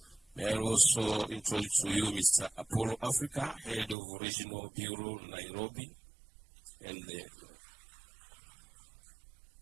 May I also introduce to you Mr. Apollo Africa, Head of Regional Bureau, Nairobi. And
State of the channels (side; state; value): left; drops out; at 4.0 s